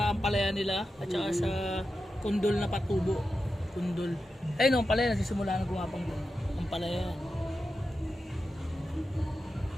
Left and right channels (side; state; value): both; normal; correlation 0.90